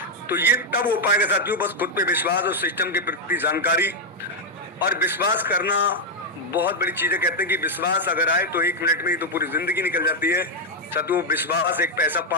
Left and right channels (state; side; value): normal; both; correlation 0.00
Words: तो ये तब हो पाएगा साथियों बस खुद पे विश्वास और सिस्टम के प्रति जानकारी और विश्वास करना बहुत बड़ी चीज है। कहते हैं कि विश्वास अगर आए तो 1 मिनट में ही तो पूरी जिंदगी निकल जाती है। साथियों, विश्वास एक पैसा